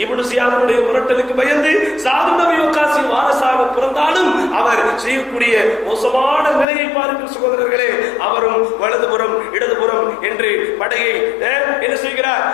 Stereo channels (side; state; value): right; drops out; at 6.7 s